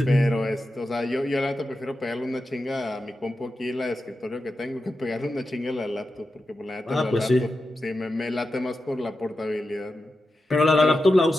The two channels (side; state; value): both; normal; correlation 0.90